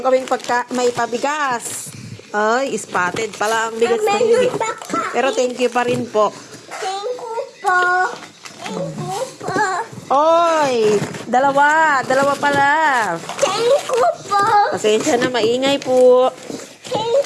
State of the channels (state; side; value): identical; both; correlation 1.00